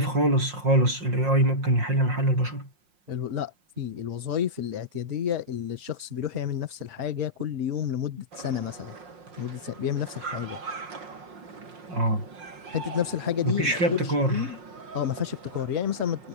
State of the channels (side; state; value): left; late; 5.6 ms